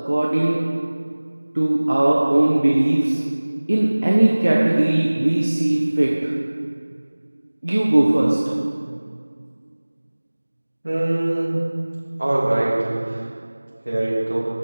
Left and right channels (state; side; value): inverted; both; correlation -1.00